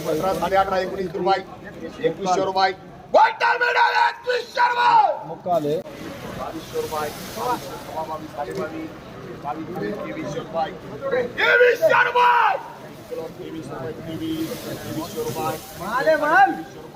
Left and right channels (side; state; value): both; identical; correlation 1.00